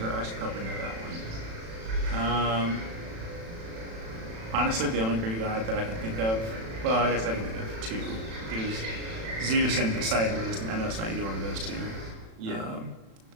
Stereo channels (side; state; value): left; late; 36 ms